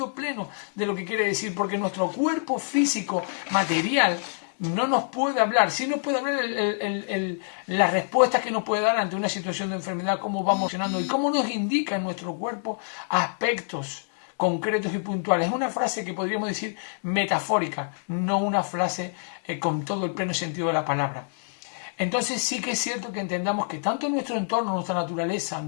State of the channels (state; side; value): silent; right; digital silence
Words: pleno de lo que quiere decir, porque nuestro cuerpo físico, material, no nos puede hablar. Sí nos puede hablar las respuestas que nos puede dar ante una situación de enfermedad, cómo va emocionando y cómo nos indica en nuestro cuerpo aspectos concretos y puntuales. Es una frase que podríamos decir metafórica, no una frase con todo el pleno sentido de la palabra. Entonces sí que es cierto que entendamos que tanto nuestro entorno, nuestra naturaleza,